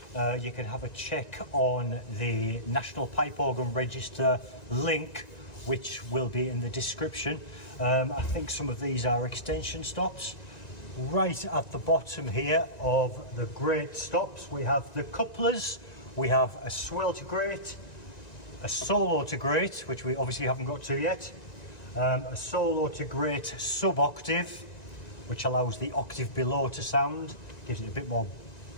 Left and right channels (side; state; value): right; late; 1.9 ms